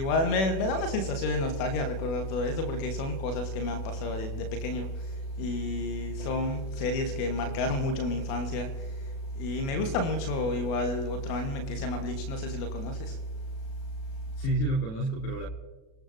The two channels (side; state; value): right; late; 37 ms